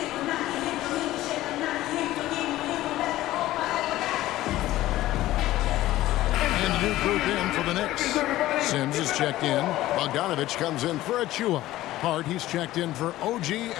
New group in for the Knicks. Sims is checked in. Bogdanovich comes in for Achua. Hart, he's checked in for OG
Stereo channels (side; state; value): right; quieter; 15.6 dB